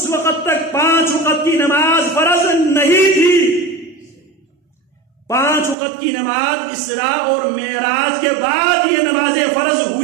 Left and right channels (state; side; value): drops out; left; at 5.8 s